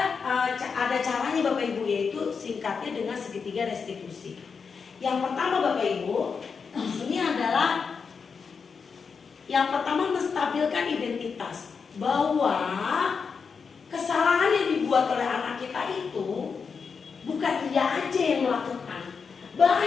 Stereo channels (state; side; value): quieter; right; 5.6 dB